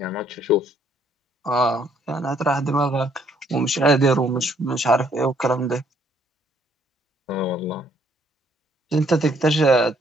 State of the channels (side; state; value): both; normal; correlation 0.67